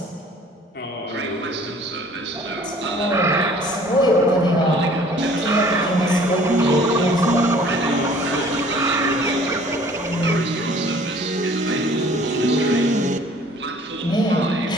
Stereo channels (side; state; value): both; normal; correlation 0.53